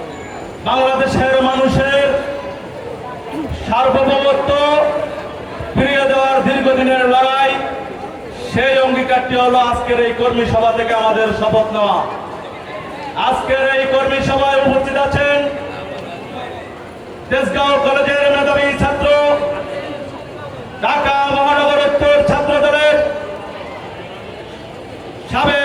বাংলাদেশের মানুষের সার্বভৌমত্ব ফিরিয়ে দেওয়ার দীর্ঘদিনের লড়াই। সেই অঙ্গীকারটি হলো আজকের এই কর্মী সভা থেকে আমাদের শপথ নেওয়া। আজকের এই কর্মী সভায় উপস্থিত আছেন তেজগাঁও কলেজের মেধাবী ছাত্র, ঢাকা মহানগর উত্তর ছাত্র দলের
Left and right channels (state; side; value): identical; both; correlation 1.00